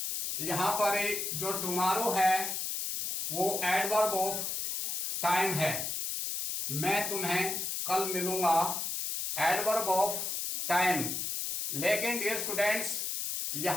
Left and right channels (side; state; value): left; noise; hiss, 2 dB below the sound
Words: यहां पर जो टुमारो है वो एडवर्ब ऑफ टाइम है। मैं तुम्हें कल मिलूंगा, एडवर्ब ऑफ टाइम। लेकिन डियर स्टूडेंट्स,